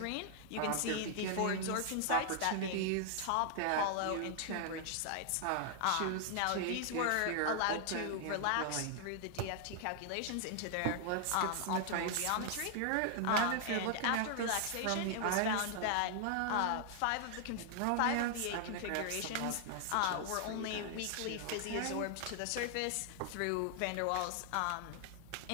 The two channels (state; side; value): different; both; correlation 0.00